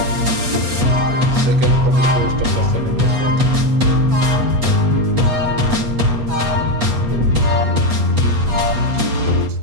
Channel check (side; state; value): left; late; 8.1 ms